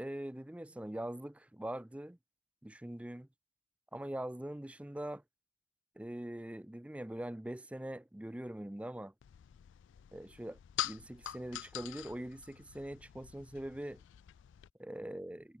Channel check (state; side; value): normal; both; correlation 0.78